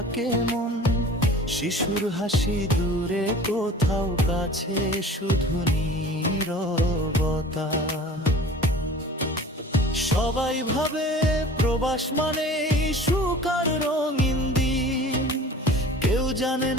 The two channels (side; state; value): both; normal; correlation 0.43